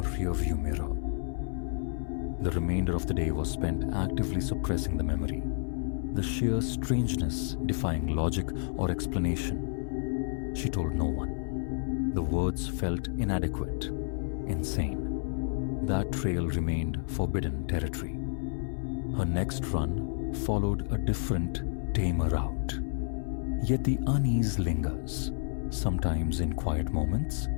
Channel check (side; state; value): right; silent; 58 dB below the other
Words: rearview mirror. The remainder of the day was spent actively suppressing the memory, the sheer strangeness defying logic or explanation. She told no one. The words felt inadequate, insane. That trail remained forbidden territory. Her next run followed a different, tamer route. Yet the unease lingers. Sometimes in quiet moments,